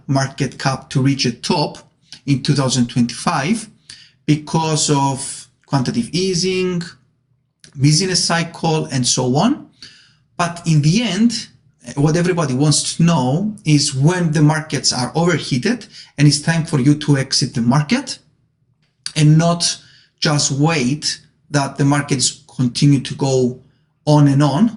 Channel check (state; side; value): identical; both; correlation 1.00